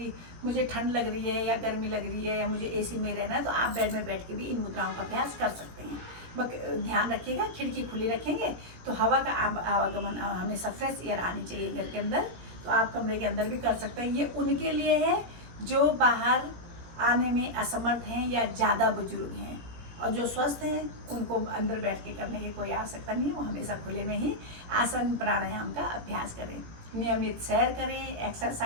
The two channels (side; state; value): left; late; 17 ms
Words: मुझे ठंड लग रही है या गर्मी लग रही है या मुझे एसी में रहना है, तो आप बेड में बैठ के भी इन मुद्राओं का अभ्यास कर सकते हैं। ध्यान रखिएगा, खिड़की खुली रखेंगे तो हवा का आवागमन, हमेशा फ्रेश एयर आनी चाहिए घर के अंदर। तो आप कमरे के अंदर भी कर सकते हैं। ये उनके लिए है जो बाहर आने में असमर्थ हैं या ज़्यादा बुजुर्ग हैं। और जो स्वस्थ हैं उनको अंदर बैठ के करने की कोई आवश्यकता नहीं है, वो हमेशा खुले में ही आसन प्राणायाम का अभ्यास करें। नियमित सैर करें,